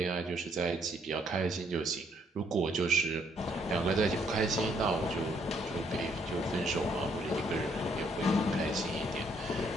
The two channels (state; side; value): normal; both; correlation 0.69